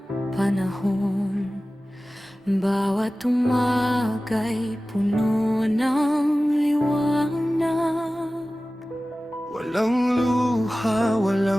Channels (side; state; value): both; normal; correlation 0.96